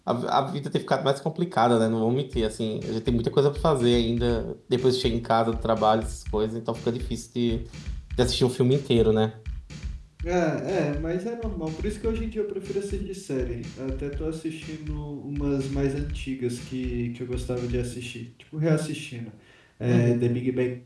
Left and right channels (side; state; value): both; identical; correlation 1.00